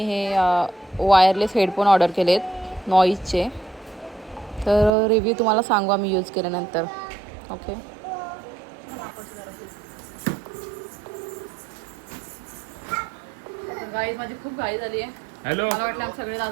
हे वायरलेस हेडफोन ऑर्डर केलेत नॉईजचे. तर रिव्ह्यू तुम्हाला सांगू आम्ही यूज केल्यानंतर. ओके गाईज माझी खूप घाई झाली आहे. हॅलो मला वाटलं आमचे सगळे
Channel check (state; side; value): drops out; left; at 4.9 s